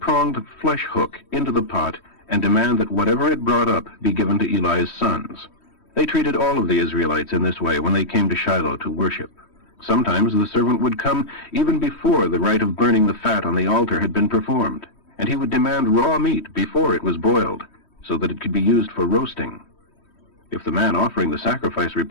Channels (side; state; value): right; late; 3.1 ms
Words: flesh hook into the pot and demand that whatever it brought up be given to Eli's sons. They treated all of the Israelites in this way when they came to Shiloh to worship. Sometimes the servant would come even before the rite of burning the fat on the altar had been performed, and he would demand raw meat before it was boiled, so that it could be used for roasting. If the man offering the sacrifice